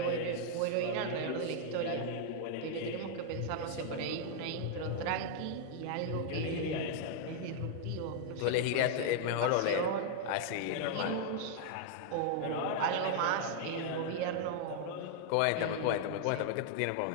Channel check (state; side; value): different; both; correlation -0.01